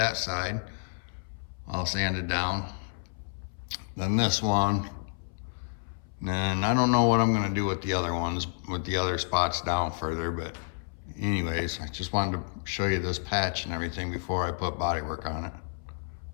side. I'll sand it down. Then this one. And I don't know what I'm gonna do with the other ones, with the other spots down further, but anyways, I just wanted to show you this patch and everything before I put body work on it,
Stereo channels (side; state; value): right; silent; 58 dB below the other